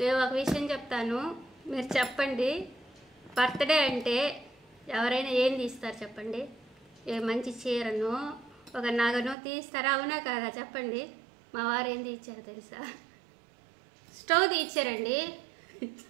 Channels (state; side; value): drops out; left; at 9.3 s